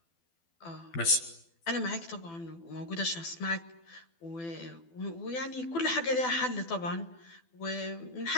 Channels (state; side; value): late; right; 12 ms